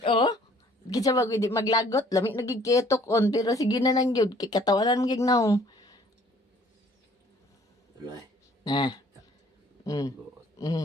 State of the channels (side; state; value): both; normal; correlation 0.58